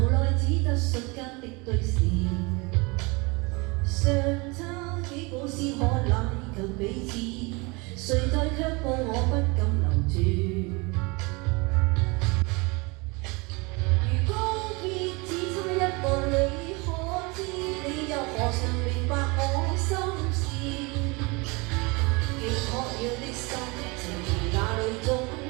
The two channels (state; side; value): quieter; left; 27.3 dB